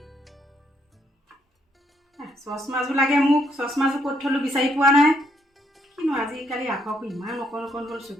চশমাযোৰ লাগে মোক। চশমাযোৰ ক'ত থলো বিচাৰি পোৱা নাই। কিনো আজিকালি আখৰবোৰ ইমান অকণ অকণ হ'ল,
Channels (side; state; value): both; normal; correlation 0.73